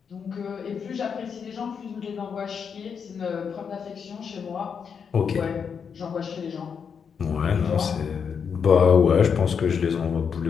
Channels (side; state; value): right; quieter; 6.6 dB